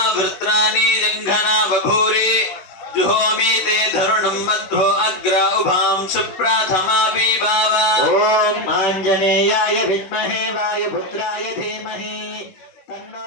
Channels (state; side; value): late; right; 16 ms